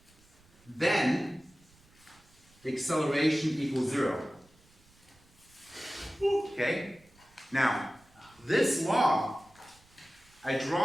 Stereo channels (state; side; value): noise; right; rumble, 29 dB below the sound